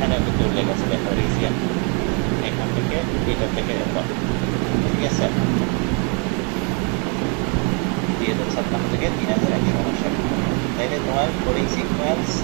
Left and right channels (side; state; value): left; quieter; 36.4 dB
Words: কিন্তু উল্লেখ আছে, দেখো রিজিয়ন এখান থেকে এটা থেকে এত, ঠিক আছে? 2056 থেকে 3159। তাইলে তোমার coding sequence,